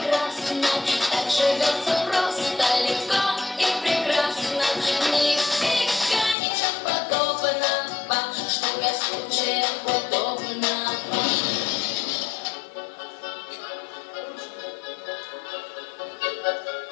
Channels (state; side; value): drops out; right; at 6.4 s